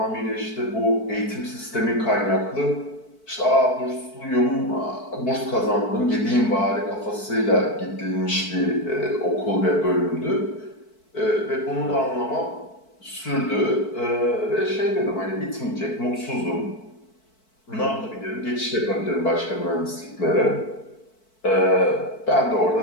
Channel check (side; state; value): right; late; 4.5 ms